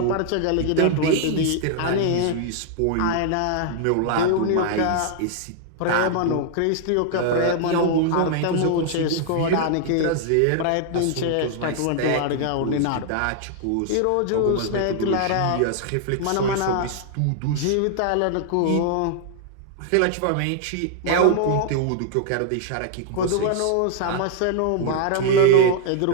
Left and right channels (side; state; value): both; different; correlation -0.01